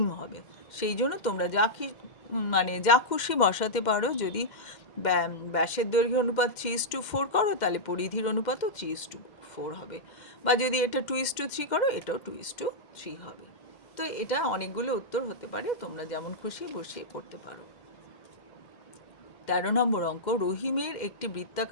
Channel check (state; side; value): late; right; 2.1 ms